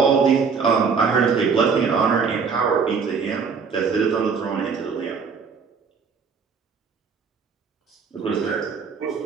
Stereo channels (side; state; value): left; quieter; 5.6 dB